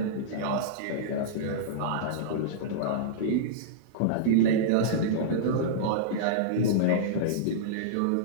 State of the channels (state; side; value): different; both; correlation -0.03